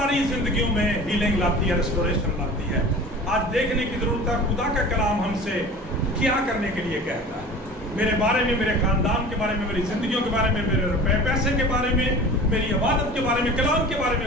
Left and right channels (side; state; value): both; normal; correlation 0.39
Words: زندگیوں میں ہیلنگ لاتی ہے، ریسٹوریشن لاتی ہے. آج دیکھنے کی ضرورت ہے خدا کا کلام ہم سے کیا کرنے کے لیے کہتا ہے، میرے بارے میں، میرے خاندان کے بارے میں، میری زندگیوں کے بارے میں، میرے روپے پیسے کے بارے میں، میری عبادت کے بارے میں، کلام کے بارے میں